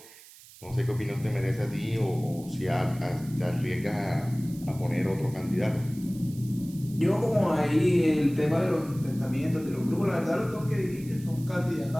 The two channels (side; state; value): right; noise; hiss, 21 dB below the sound